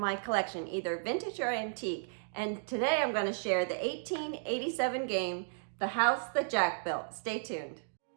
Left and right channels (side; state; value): left; silent; digital silence